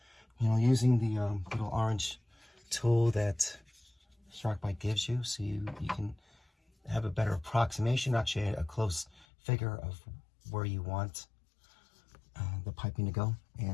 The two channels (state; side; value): drops out; right; at 9.2 s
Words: you know, using the little orange tool that SharkBite gives you, so you can have a better approximation, actually a close figure of where you want the piping to go.